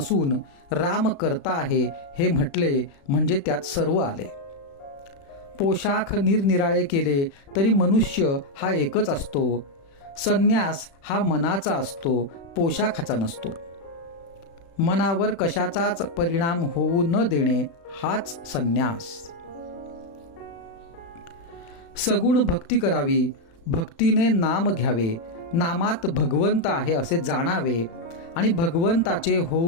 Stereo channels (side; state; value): right; late; 35 ms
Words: राम करता आहे हे म्हटले म्हणजे त्यात सर्व आले. पोशाख निरनिराळे केले तरी मनुष्य हा एकच असतो. संन्यास हा मनाचा असतो, पोशाखाचा नसतो. मनावर कशाचाच परिणाम होऊ न देणे हाच संन्यास. सगुण भक्ती करावी, भक्तीने नाम घ्यावे, नामात भगवंत आहे असे जाणावे आणि भगवंताचे